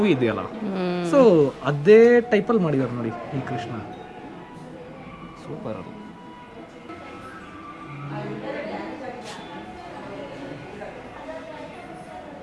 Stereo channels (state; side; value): identical; both; correlation 1.00